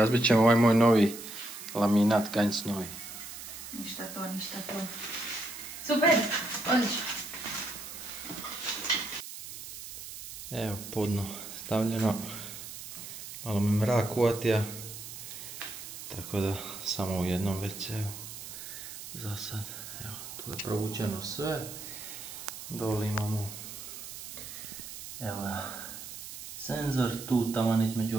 ćemo ovaj moj novi laminat Ganj Snowy. Ništa to. Super. Odlično. Evo podno stavljeno. Malo me mrak uvatija. Tako da samo u jednom WC-u. Za sad. Evo, tu je provučeno sve. Dole imamo evo ga, senzor, tu taman između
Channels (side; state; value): right; noise; hiss, 11 dB below the sound